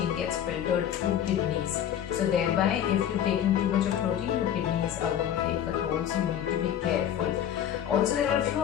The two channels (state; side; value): quieter; right; 10.1 dB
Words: gets filtered through kidneys. So thereby, if you're taking too much of protein, your kidneys are going to take a toll, so you need to be careful. Also, there are a few